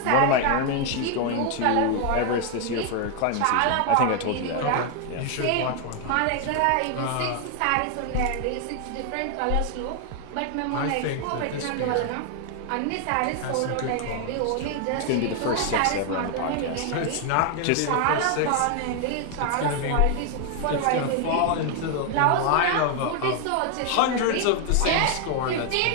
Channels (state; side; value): different; both; correlation 0.00